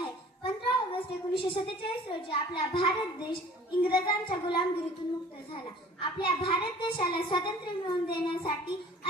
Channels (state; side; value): normal; both; correlation 0.48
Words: 15 ऑगस्ट 1947 रोजी आपला भारत देश इंग्रजांच्या गुलामगिरीतून मुक्त झाला. आपल्या भारत देशाला स्वातंत्र्य मिळवून देण्यासाठी